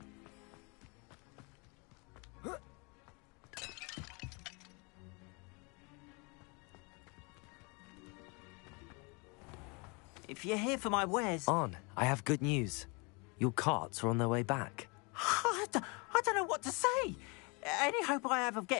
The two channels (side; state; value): right; quieter; 30.7 dB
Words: If you're here for my wares... On, I have good news. Your carts are on their way back. I don't know what to say. Any hope I have of